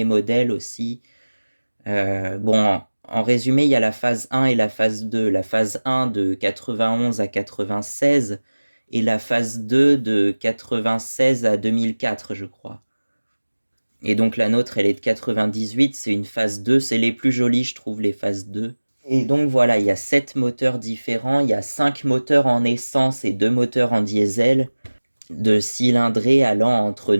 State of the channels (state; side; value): inverted; both; correlation -1.00